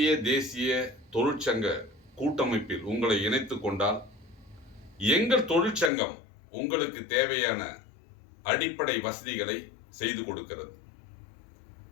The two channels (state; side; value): drops out; right; at 5.9 s